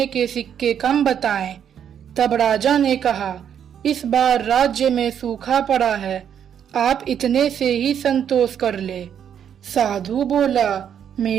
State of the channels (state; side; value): quieter; left; 8.8 dB